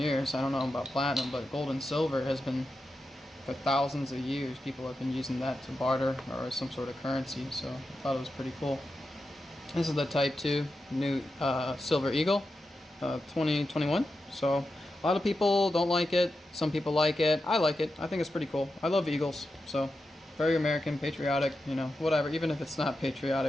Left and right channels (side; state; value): both; normal; correlation 0.89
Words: I don't know about platinum, but gold and silver has been for thousands of years. People have been using that to barter or some sort of currency. So I thought it was pretty cool. This is the Type 2 new Silver Eagle 2021. So a lot of people don't like it. Some people like it. I like it. I think it's pretty cool. I love eagles. So very American, patriotic, you know, whatever. Even if it's not